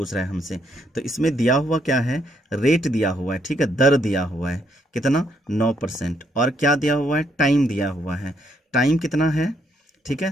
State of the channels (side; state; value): both; normal; correlation 0.73